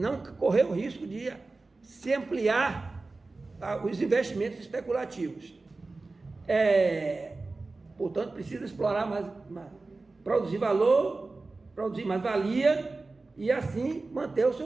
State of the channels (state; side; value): quieter; left; 3.5 dB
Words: correr o risco de se ampliar os investimentos especulativos. Portanto, precisa explorar mais, produzir valor, produzir mais valia e assim manter o